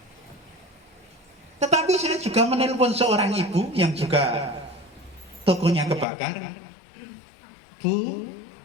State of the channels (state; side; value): drops out; right; at 6.1 s